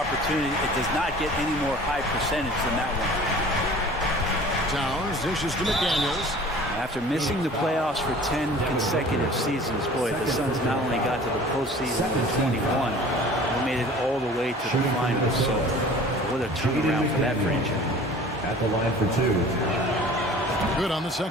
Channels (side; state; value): both; normal; correlation 0.45